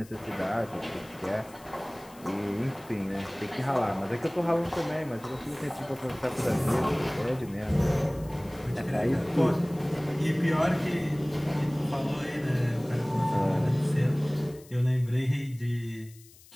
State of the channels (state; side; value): noise; left; hiss, 24 dB below the sound